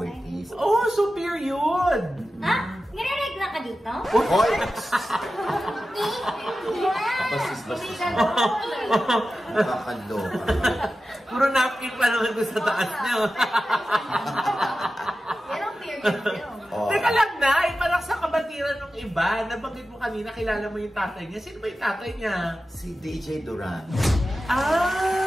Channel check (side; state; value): both; normal; correlation 0.93